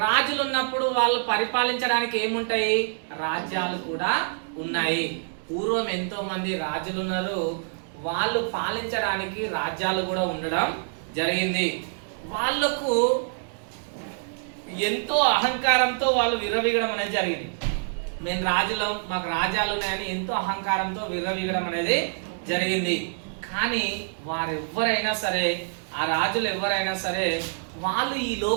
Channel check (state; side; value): silent; left; digital silence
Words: రాజులు ఉన్నప్పుడు వాళ్ళు పరిపాలించడానికి ఏముంటాయి? రాజ్యాలు కూడా ఉన్నాయి. పూర్వం ఎంతో మంది రాజులు ఉన్నారు, వాళ్ళు పాలించడానికి రాజ్యాలు కూడా ఉండడం జరిగింది. వాళ్ళకు ఎంతో అహంకారంతో వాళ్ళు విర్రవీగడం అనేది జరిగింది. మేము రాజులం, మాకు రాజ్యాలు ఉన్నాయని ఎంతో అహంకారంతో విర్రవీగడం అనేది జరిగింది. కానీ వారెవ్వరైనా సరే, ఆ రాజులు ఎవరైనా సరే, వాళ్ళు ఈ